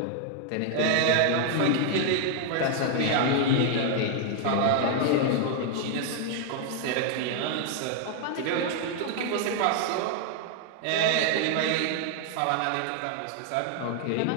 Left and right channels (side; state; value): both; different; correlation 0.00